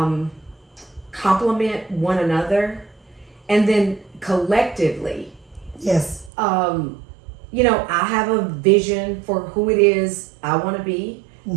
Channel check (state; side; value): drops out; left; at 6.3 s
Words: complement one another, and then collectively. Yes. You know, I have a vision for who it is I want to be